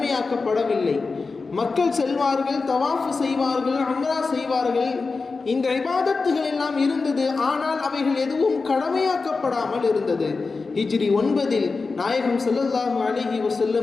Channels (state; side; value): quieter; right; 4.2 dB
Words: மக்கள் செல்வார்கள், தவாஃப் செய்வார்கள், உம்ரா செய்வார்கள், இந்த இபாதத்துகள் எல்லாம் இருந்தது. ஆனால் அவைகள் எதுவும் கடமையாக்கப்படாமல் இருந்தது. ஹிஜ்ரி 9 நாயகம் ஸல்லல்லாஹு அலைஹி